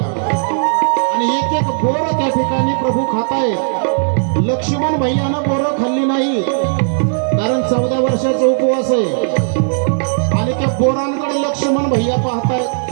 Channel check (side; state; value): left; silent; digital silence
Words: आणि एक एक बोर त्या ठिकाणी प्रभू खातायत. लक्ष्मण भैयानं बोरं खाल्ली नाही कारण 14 वर्षाचा उपवास आहे. आणि त्या बोरांकडे लक्ष्मण भैया पाहतायत.